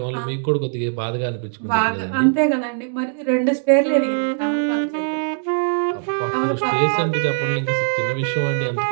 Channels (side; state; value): left; silent; 65 dB below the other